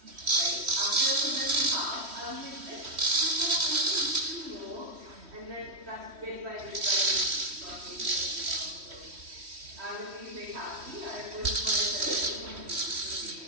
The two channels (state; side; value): late; left; 3.1 ms